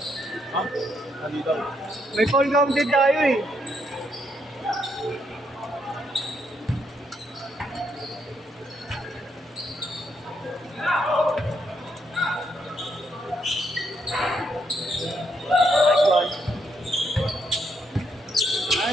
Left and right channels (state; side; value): normal; both; correlation 0.76